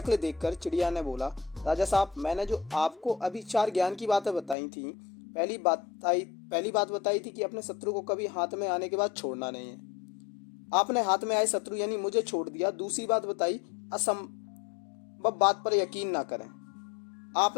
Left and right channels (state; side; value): drops out; right; at 4.5 s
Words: देखकर चिड़िया ने बोला, राजा साहब, मैंने जो आपको अभी 4 ज्ञान की बातें बताई थी, पहली बात बताई थी कि अपने शत्रु को कभी हाथ में आने के बाद छोड़ना नहीं है। आपने हाथ में आए शत्रु यानी मुझे छोड़ दिया। दूसरी बात बताई, असंभव बात पर यकीन ना करें।